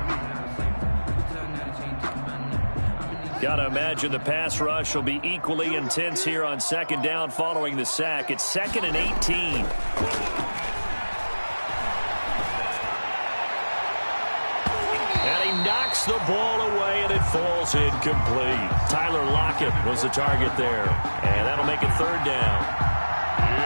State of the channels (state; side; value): inverted; both; correlation -1.00